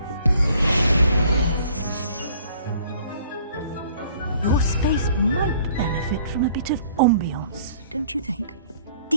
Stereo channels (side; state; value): both; inverted; correlation -0.56